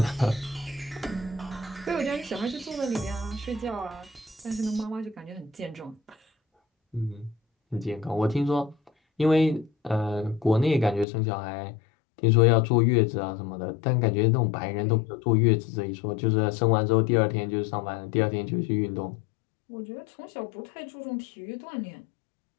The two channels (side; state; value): right; drops out; at 11.1 s